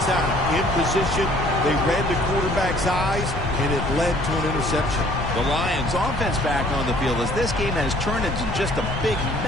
time. In position, they read the quarterback's eyes, and it led to an interception. The Lions offense back on the field as this game has turned into just a big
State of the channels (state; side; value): noise; left; rumble, 5 dB below the sound